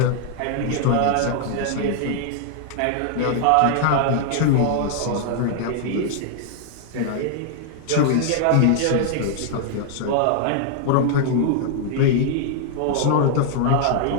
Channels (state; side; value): different; both; correlation -0.01